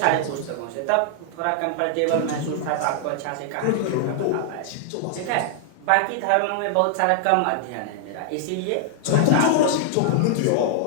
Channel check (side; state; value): both; different; correlation -0.01